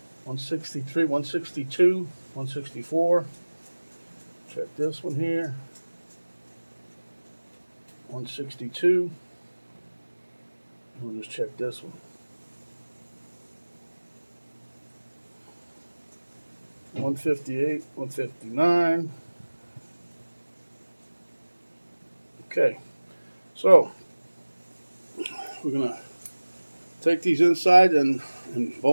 163, 162, 164. Check this one here. 162. We'll just check this one. 158, 159. Okay, so we're gonna take these inside and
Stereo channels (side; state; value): both; inverted; correlation -1.00